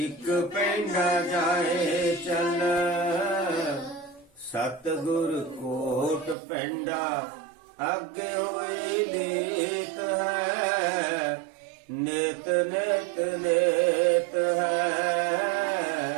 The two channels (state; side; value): drops out; left; at 6.4 s